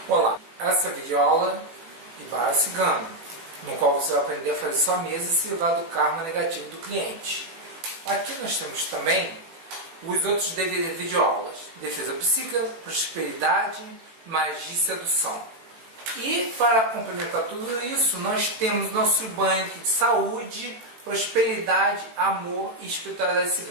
Olá, essa é a videoaula de Barra Cigana, no qual você vai aprender a fazer sua mesa e se livrar do karma negativo do cliente. Aqui nós temos também os outros videoaulas: defesa psíquica, prosperidade, magia e sedução. E para complementar tudo isso, nós temos nosso banho aqui de saúde, prosperidade, amor e espiritualidade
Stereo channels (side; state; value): left; late; 18 ms